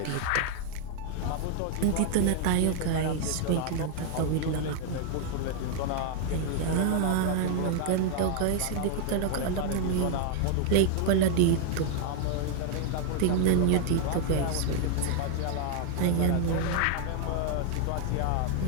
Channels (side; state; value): both; different; correlation 0.00